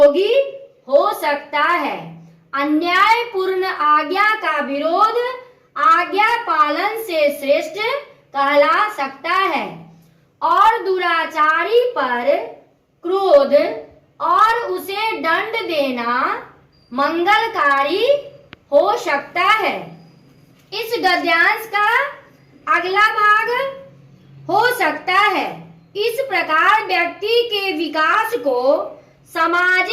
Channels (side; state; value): both; identical; correlation 1.00